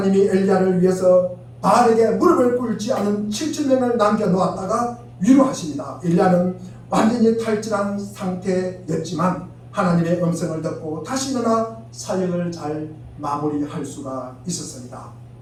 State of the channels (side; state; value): both; identical; correlation 1.00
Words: 엘리야를 위해서 바알에게 무릎을 꿇지 않은 7,000명을 남겨놓았다가 위로하십니다. 엘리야는 완전히 탈진한 상태였지만 하나님의 음성을 듣고 다시 일어나 사역을 잘 마무리할 수가 있었습니다.